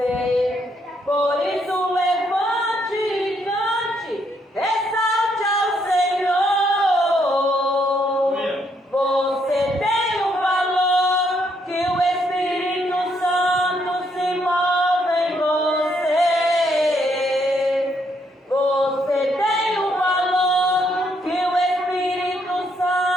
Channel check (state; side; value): normal; both; correlation 0.73